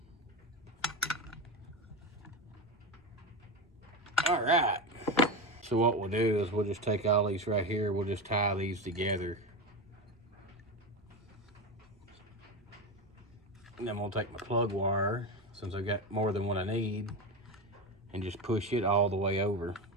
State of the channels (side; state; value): both; normal; correlation 0.19